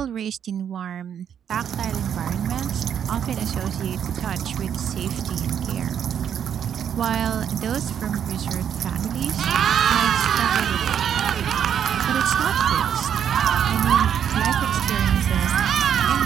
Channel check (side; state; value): left; quieter; 8.7 dB